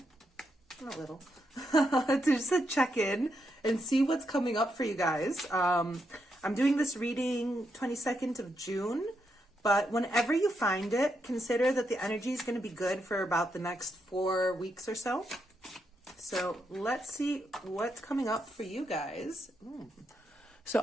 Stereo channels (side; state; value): both; normal; correlation 0.81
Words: Not little. To just check in and see what's coming up for you guys. I'm doing this reading 22nd of June. But whenever you find it, consider that the energy is going to be good for about the next 4 weeks or so. So let's see what's coming up for you guys. So